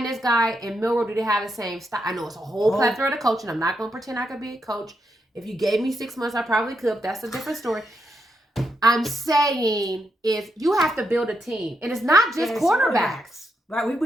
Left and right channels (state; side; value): normal; both; correlation 0.82